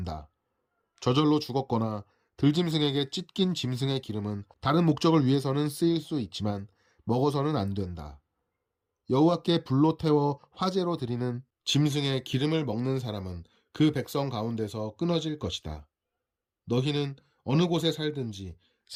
저절로 죽었거나 들짐승에게 찢긴 짐승의 기름은 다른 목적을 위해서는 쓰일 수 있지만 먹어서는 안 된다. 여호와께 불로 태워 화제로 드리는 짐승의 기름을 먹는 사람은 그 백성 가운데서 끊어질 것이다. 너희는 어느 곳에 살든지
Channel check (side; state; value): both; identical; correlation 1.00